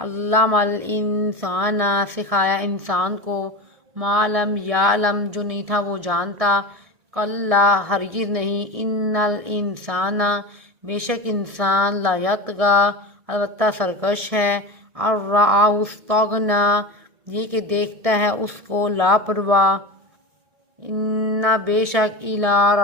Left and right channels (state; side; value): late; left; 1.7 ms